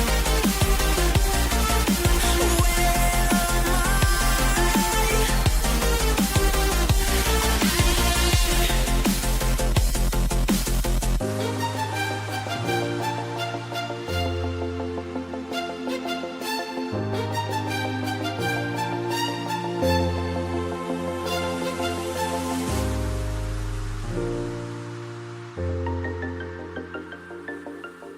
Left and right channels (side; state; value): both; identical; correlation 1.00